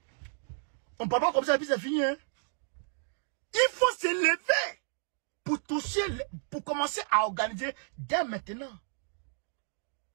On ne parle pas comme ça, et puis c'est fini, hein. Il faut se lever pour toucher, pour commencer à organiser dès maintenant.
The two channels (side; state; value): left; silent; digital silence